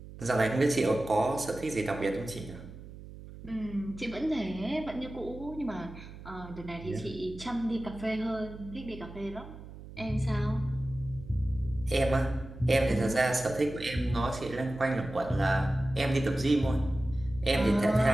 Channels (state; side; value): noise; right; hum, 15 dB below the sound